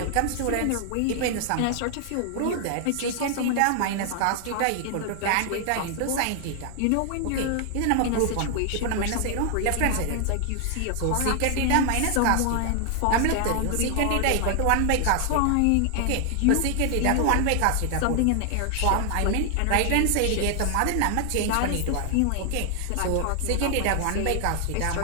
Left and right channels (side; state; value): both; different; correlation 0.00